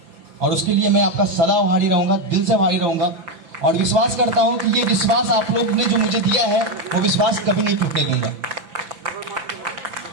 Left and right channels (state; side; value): late; left; 5.9 ms